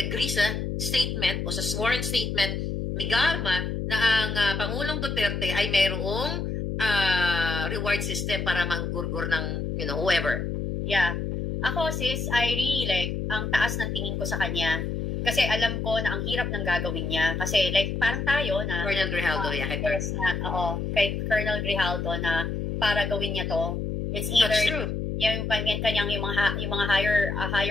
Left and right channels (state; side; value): noise; left; hum, 3 dB below the sound